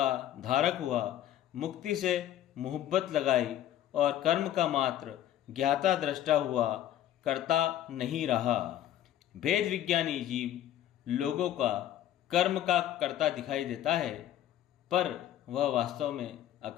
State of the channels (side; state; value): right; quieter; 11.9 dB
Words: धारक हुआ, मुक्ति से मोहब्बत लगाई और कर्म का मात्र ज्ञाता दृष्टा हुआ, कर्ता नहीं रहा। भेद विज्ञानी जीव लोगों का कर्म का कर्ता दिखाई देता है, पर वह वास्तव में